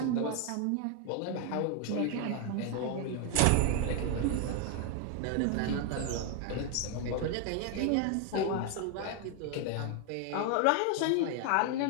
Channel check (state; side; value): different; both; correlation 0.01